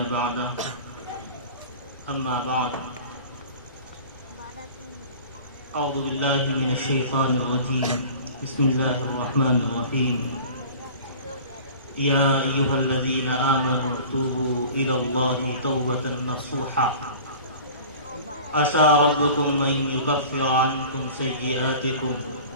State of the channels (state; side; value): inverted; both; correlation -0.41